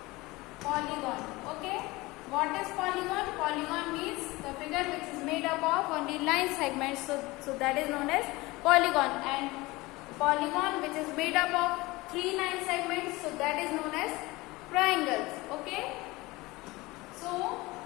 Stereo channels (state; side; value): quieter; right; 21.5 dB